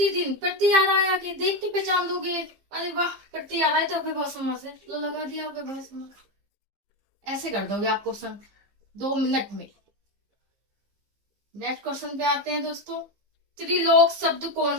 प्रति आ रहा है, आगे देख के पहचान दोगे। अरे वाह, प्रति आ रहा है तो अव्ययभाव समास है, लो लगा दिया अव्ययभाव समास। ऐसे कर दोगे आप क्वेश्चन 2 मिनट में। नेक्स्ट क्वेश्चन पे आते हैं दोस्तों। त्रिलोक शब्द कौन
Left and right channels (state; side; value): late; left; 15 ms